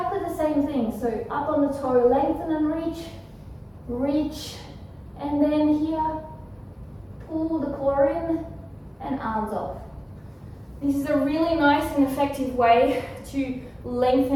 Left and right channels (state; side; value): identical; both; correlation 1.00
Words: the same thing. So up on the toe, lengthen and reach, reach, and then here, pull the core in and arms off. This is a really nice and effective way to